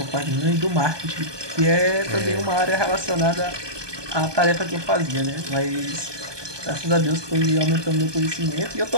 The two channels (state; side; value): late; left; 1.2 ms